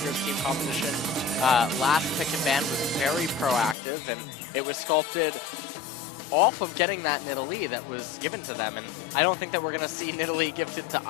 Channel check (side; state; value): right; drops out; at 3.8 s